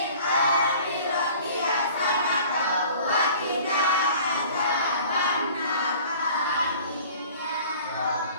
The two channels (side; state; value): both; inverted; correlation -0.48